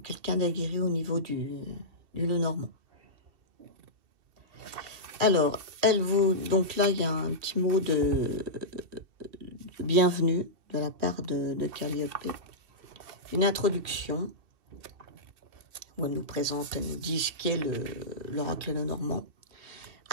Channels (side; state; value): left; late; 2.7 ms